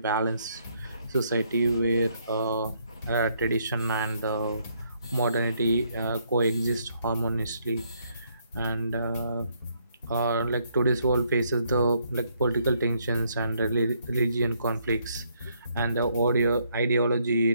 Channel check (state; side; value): inverted; both; correlation -0.71